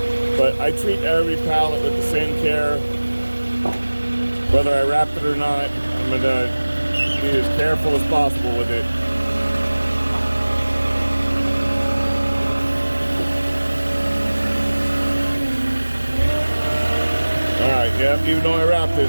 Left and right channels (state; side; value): inverted; both; correlation -1.00